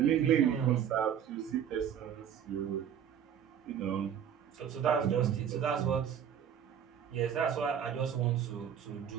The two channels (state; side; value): quieter; left; 8.9 dB